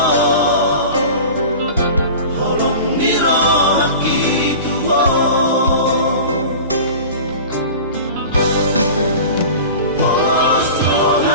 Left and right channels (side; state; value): both; inverted; correlation -0.36